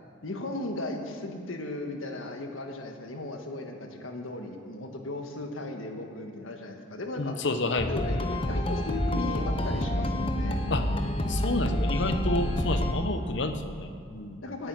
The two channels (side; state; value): both; normal; correlation 0.55